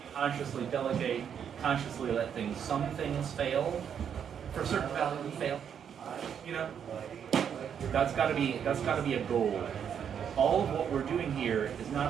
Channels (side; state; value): left; quieter; 8.1 dB